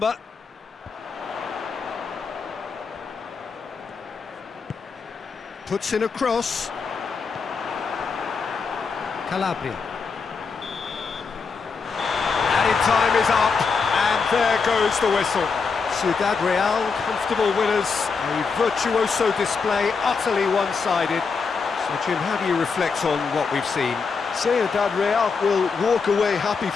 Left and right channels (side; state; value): right; quieter; 5.1 dB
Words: Puts in a cross. Calabria. Added time is up, and there goes the whistle. Ciudad Real, comfortable winners, a virtuoso display, utterly one-sided. So Jim, how do you reflect on what we've seen? Ciudad Real will walk away happy